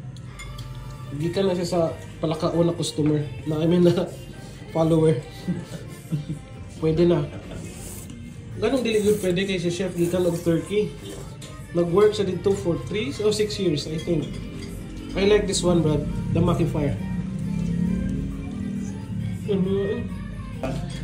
Gikan na siya sa palakaon na customer. Na na follower. Pwede na. Ganong dili good pwede kay si chef gikan og Turkey. Nag-work siya dito for 3 or 6 years, I think. I like this one, Brad. The Maki Fire.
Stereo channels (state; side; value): identical; both; correlation 1.00